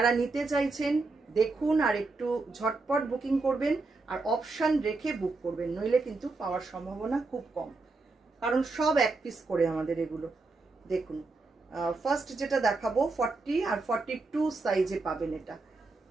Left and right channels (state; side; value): quieter; left; 3.6 dB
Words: নিতে চাইছেন দেখুন, আর একটু ঝটপট বুকিং করবেন, আর অপশান রেখে বুক করবেন, নইলে কিন্তু পাওয়ার সম্ভাবনা খুব কম, কারণ সব এক পিস করে আমাদের এগুলো। দেখুন, ফার্স্ট যেটা দেখাবো 40 আর 42 সাইজে পাবেন এটা।